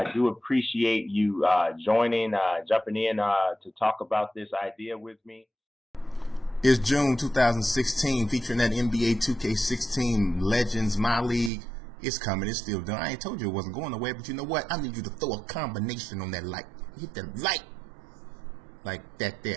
do appreciate you jumping in to talk about this idea with me. It's June 2016, featuring that NBA 2K16 Legends, My League. It's coming. It's still done. I ain't told you it wasn't going away, but you know what? I need you to throw a combination on that like. Hit the like. Like that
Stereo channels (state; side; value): drops out; left; at 11.5 s